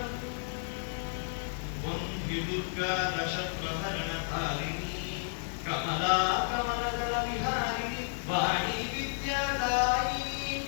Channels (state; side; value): silent; right; 56 dB below the other